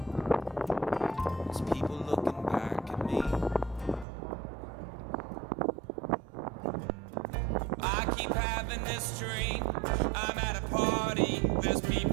There's people looking back at me. I keep having this dream. I'm at a party. There's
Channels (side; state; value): left; drops out; at 4.0 s